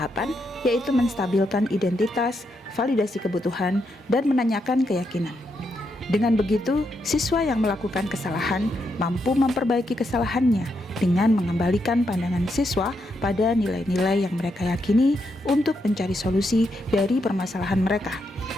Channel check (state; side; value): normal; both; correlation 0.81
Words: yaitu menstabilkan identitas, validasi kebutuhan, dan menanyakan keyakinan. Dengan begitu, siswa yang melakukan kesalahan mampu memperbaiki kesalahannya dengan mengembalikan pandangan siswa pada nilai-nilai yang mereka yakini untuk mencari solusi dari permasalahan mereka,